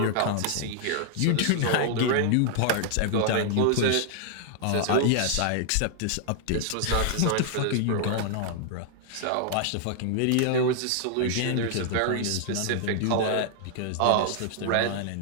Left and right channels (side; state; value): both; different; correlation 0.00